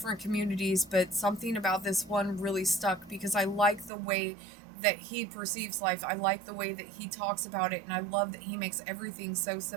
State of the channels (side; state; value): left; drops out; at 3.9 s